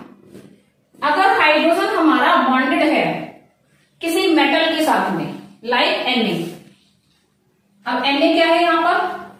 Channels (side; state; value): both; identical; correlation 1.00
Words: अगर हाइड्रोजन हमारा बॉन्डेड है किसी मेटल के साथ में, लाइक Na। अब Na क्या है यहाँ